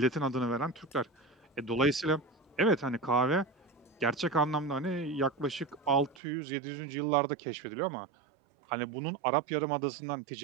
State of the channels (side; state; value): left; drops out; at 6.2 s